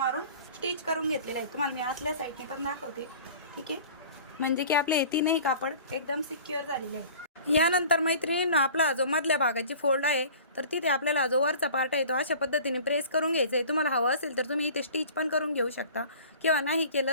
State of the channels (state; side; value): inverted; both; correlation -0.44